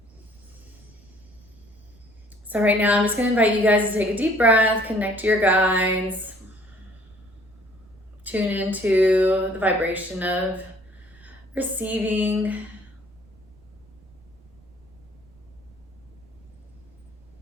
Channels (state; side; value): noise; right; rumble, 27 dB below the sound